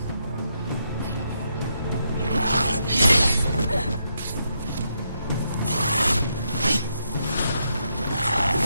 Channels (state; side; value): inverted; both; correlation -0.80